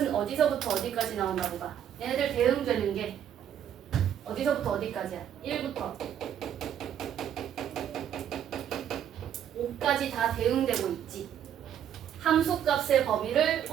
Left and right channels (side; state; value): left; quieter; 9.6 dB